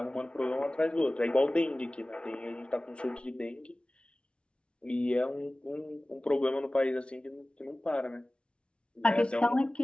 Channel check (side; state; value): right; late; 0.058 ms